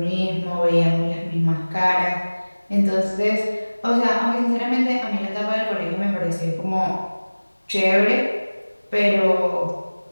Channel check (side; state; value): both; inverted; correlation -1.00